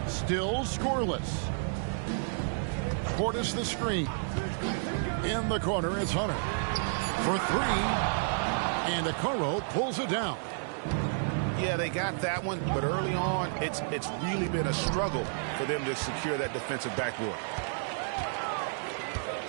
Still scoreless. Portis the screen. In the corner, it's Hunter. For 3. And Okoro pulls it down. Yeah, they got that one, but early on, it's really been a struggle for them to secure that defensive backboard.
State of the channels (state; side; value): silent; left; digital silence